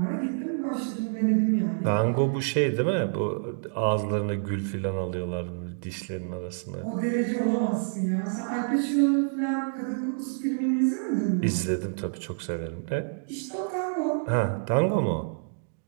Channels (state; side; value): silent; left; digital silence